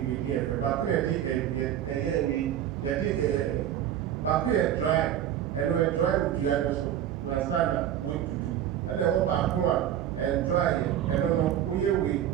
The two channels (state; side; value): quieter; left; 10.9 dB